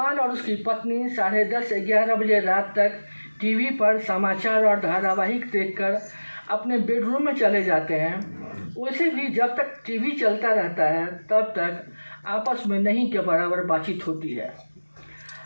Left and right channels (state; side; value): inverted; both; correlation -1.00